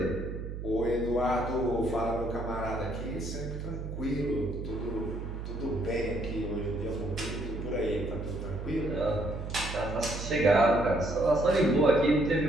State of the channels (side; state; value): right; noise; hum, 6 dB below the sound